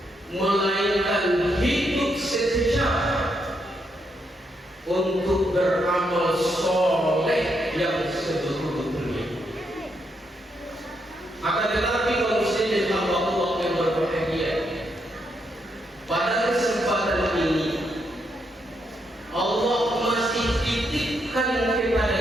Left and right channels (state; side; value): normal; both; correlation 0.79